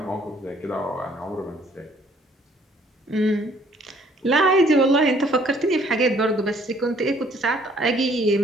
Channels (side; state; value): both; normal; correlation 0.61